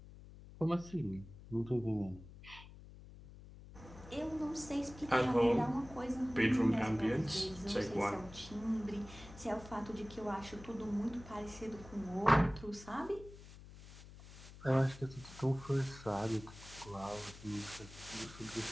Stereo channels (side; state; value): left; noise; hum, 17 dB below the sound